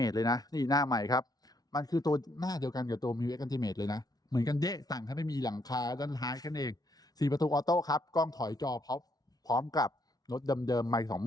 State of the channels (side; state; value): right; late; 0.19 ms